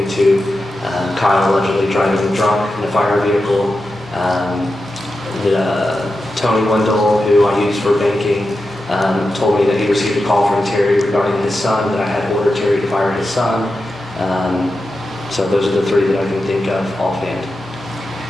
Kyle allegedly driving drunk in a fire vehicle. Tony Wendell, who I use for banking, told me that he received a call from Terry regarding his son, that I had ordered Terry to fire his son. So those are the three that I can think of offhand.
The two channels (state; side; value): normal; both; correlation 0.90